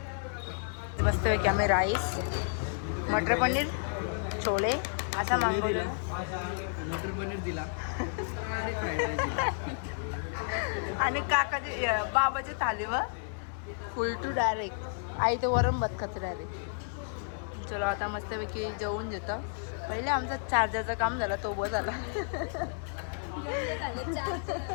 मस्तपैकी आम्ही राईस, मटर पनीर, छोले असा मागवलं. मटर पनीर दिला आणि काकाची बाबाची थालीवर फुल टू डायरेक्ट. आई तर वरण भात खाते डायरेक्ट. चलो आता मस्तपैकी जेवून घेतो. पहिले आमचा चार्जरचं काम झालं, तो बस झाला.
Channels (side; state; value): right; silent; 55 dB below the other